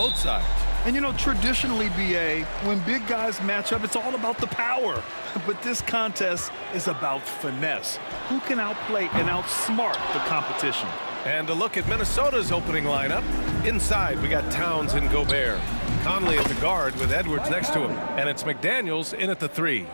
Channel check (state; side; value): inverted; both; correlation -1.00